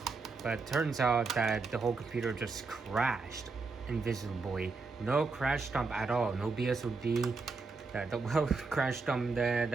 but it turns out that the whole computer just crashed invisibly. No crash dump at all, no BSOD. The crash dump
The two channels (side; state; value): left; quieter; 4.2 dB